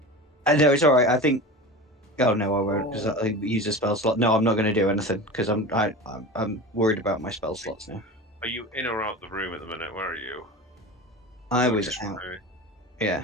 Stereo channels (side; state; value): both; normal; correlation 0.30